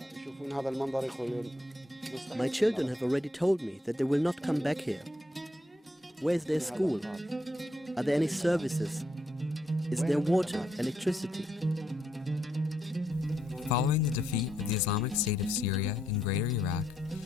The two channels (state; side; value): normal; both; correlation 0.77